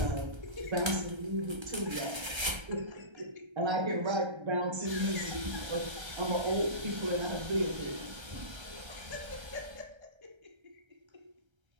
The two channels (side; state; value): left; late; 1.3 ms